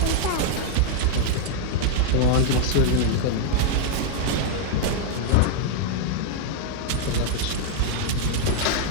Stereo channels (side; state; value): both; different; correlation -0.01